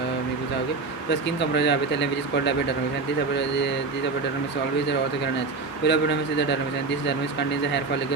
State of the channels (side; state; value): left; quieter; 4.1 dB